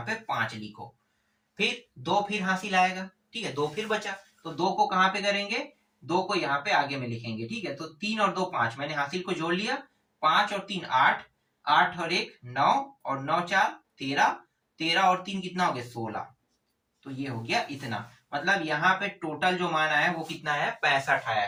पे 5 लिखो। फिर 2 फिर हासिल आएगा, ठीक है, 2 फिर बचा। तो 2 को कहाँ पे करेंगे, 2 को यहाँ पे आगे में लिखेंगे। ठीक है, तो 3 और 2 5, मैंने हासिल को जोड़ लिया। 5 और 3 8, 8 और 1 9 और 9 4 13, 13 और 3 कितना हो गया, 16। तो ये हो गया इतना। मतलब यहाँ पे टोटल जो मान आया है वो कितना आया, 65 आया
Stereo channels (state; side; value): identical; both; correlation 1.00